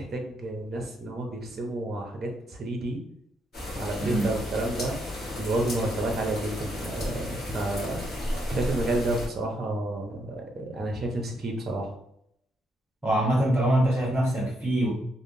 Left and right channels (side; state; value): both; normal; correlation 0.77